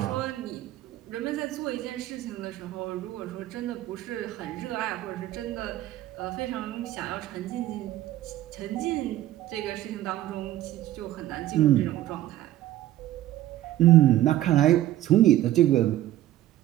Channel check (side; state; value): left; quieter; 14.1 dB